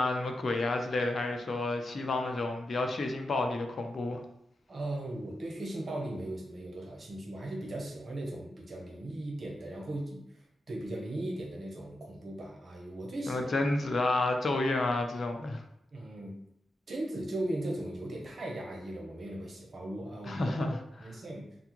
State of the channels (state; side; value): normal; both; correlation 0.88